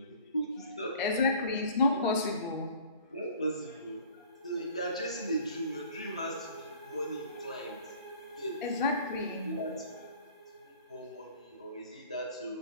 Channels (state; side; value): inverted; both; correlation -0.49